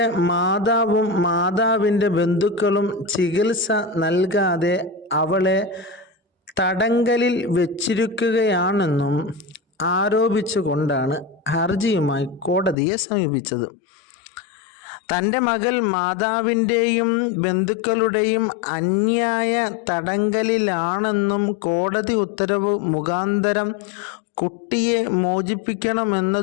മാതാവും മാതാവിൻ്റെ ബന്ധുക്കളും ചികിത്സ നൽകാതെ അവളെ തടങ്കലിൽ വെച്ചിരിക്കുകയാണെന്നും ആരോപിച്ചുകൊണ്ടാണ് ഹർജിയുമായി കോടതിയെ സമീപിച്ചത്. തൻ്റെ മകൾ മാതാവിൻ്റെയും ബന്ധുക്കളുടെയും അന്യായ തടങ്കലിലാണെന്നും കോടതി ഉത്തരവ് മുഖാന്തരം കുട്ടിയെ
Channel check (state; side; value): drops out; right; at 12.8 s